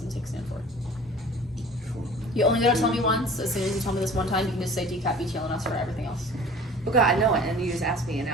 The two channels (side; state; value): both; normal; correlation 0.45